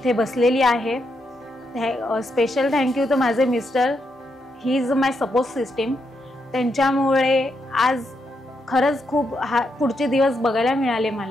बसलेली आहे। स्पेशल थँक्यू टू माझे mister, he is my support system. त्यांच्यामुळे आज खरंच खूप पुढचे दिवस बघायला मिळाले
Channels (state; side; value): normal; both; correlation 0.81